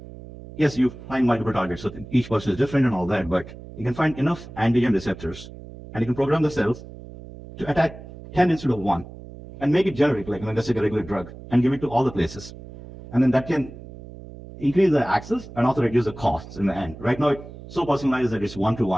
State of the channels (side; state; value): right; noise; hum, 15 dB below the sound